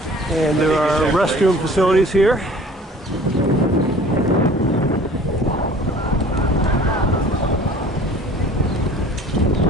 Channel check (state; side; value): normal; both; correlation 0.48